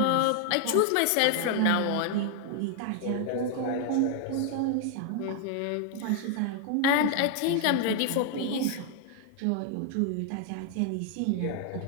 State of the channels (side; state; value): both; different; correlation 0.00